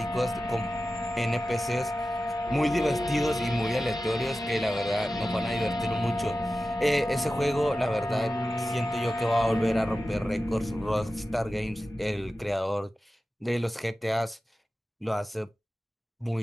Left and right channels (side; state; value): both; normal; correlation 0.94